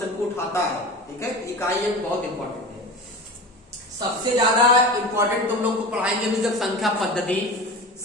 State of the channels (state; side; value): normal; both; correlation 0.31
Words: को उठाता है, ठीक है। इकाई अंक बहुत इंपॉर्टेंट है। सबसे ज्यादा इंपॉर्टेंट तुम लोग को पढ़ाएंगे भी जब संख्या पद्धति,